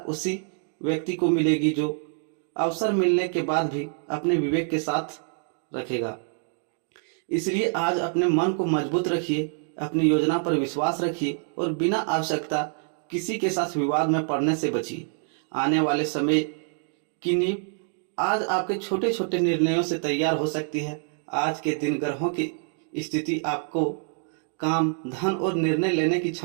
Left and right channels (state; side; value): silent; left; 57 dB below the other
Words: उसी व्यक्ति को मिलेगी जो अवसर मिलने के बाद भी अपने विवेक के साथ रखेगा। इसलिए आज अपने मन को मजबूत रखिए, अपनी योजना पर विश्वास रखिए और बिना आवश्यकता किसी के साथ विवाद में पड़ने से बचिए। आने वाले समय की नींव आज आपके छोटे छोटे निर्णयों से तैयार हो सकती है। आज के दिन ग्रहों की स्थिति आपको काम, धन और निर्णय लेने की